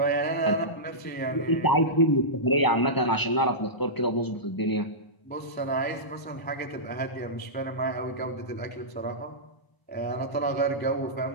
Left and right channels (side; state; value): right; late; 1.0 ms